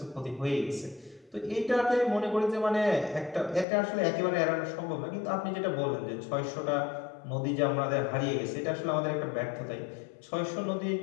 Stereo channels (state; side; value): drops out; right; at 3.7 s